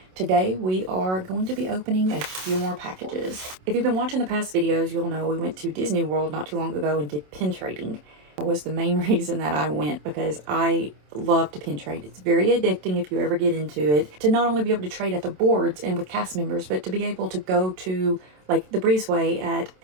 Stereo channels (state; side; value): late; left; 27 ms